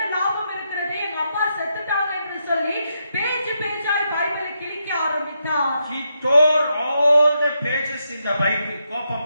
லாபம் இருக்கிறது, எங்க அப்பா செத்துட்டாங்க என்று சொல்லி பேஜ் பேஜாய் பைபிளை கிழிக்க ஆரம்பித்தார். He tore all the pages in the Bible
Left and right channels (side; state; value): both; inverted; correlation -0.82